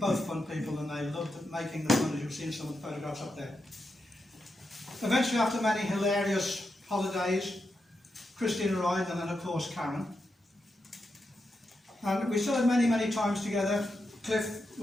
fun people and they loved making the fun, as you've seen some of the photographs up there. Eventually, after many hilarious holidays, Christine arrived, and then of course Karen. And we still had many, many times together. Cliff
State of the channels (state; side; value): normal; both; correlation 0.86